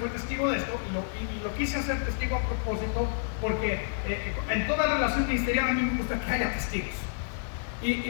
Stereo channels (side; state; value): right; silent; digital silence